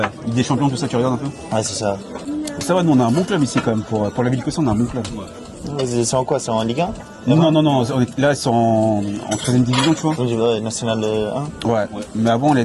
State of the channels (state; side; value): identical; both; correlation 1.00